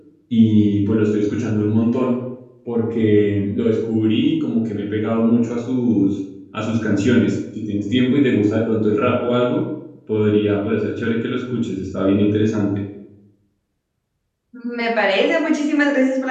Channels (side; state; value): both; identical; correlation 1.00